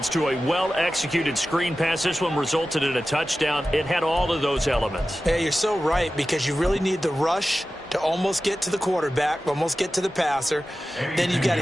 to a well-executed screen pass. This one resulted in a touchdown. It had all of those elements. Yeah, you're so right, because you really need the rush to almost get to the quarterback, almost get to the passer. Then you've got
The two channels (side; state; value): both; normal; correlation 0.94